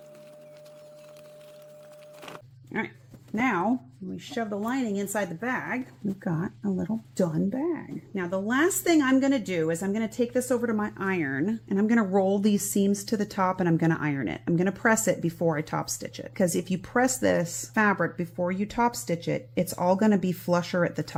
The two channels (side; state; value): both; identical; correlation 1.00